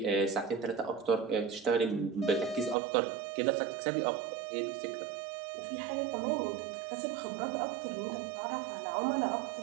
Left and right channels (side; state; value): left; drops out; at 2.8 s